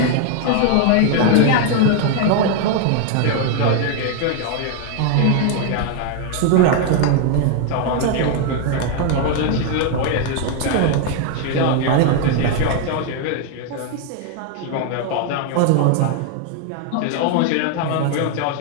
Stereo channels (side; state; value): both; different; correlation 0.00